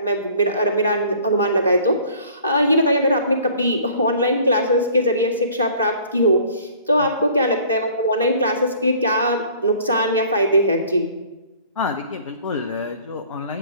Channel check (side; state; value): both; inverted; correlation -0.52